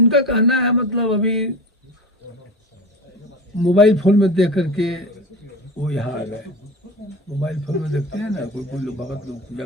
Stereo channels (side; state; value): both; normal; correlation 0.30